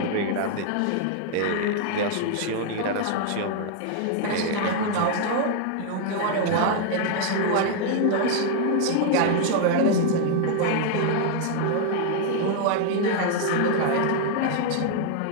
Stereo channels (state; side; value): different; both; correlation 0.00